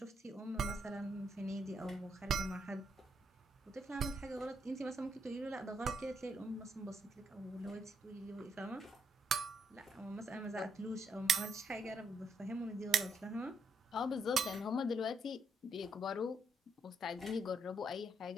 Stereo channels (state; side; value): normal; both; correlation 0.76